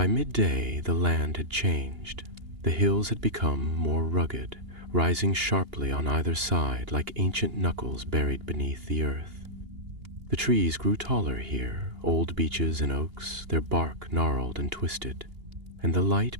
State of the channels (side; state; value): left; late; 2.8 ms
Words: midday the land had changed. The hills had become more rugged, rising sharply on either side like ancient knuckles buried beneath the earth. The trees grew taller here, old beeches and oaks, their bark gnarled and twisted, and the